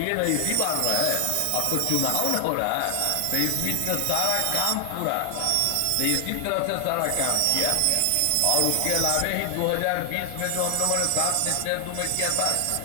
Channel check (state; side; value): different; both; correlation 0.00